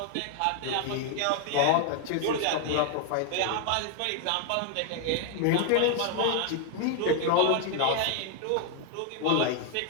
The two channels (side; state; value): both; different; correlation 0.00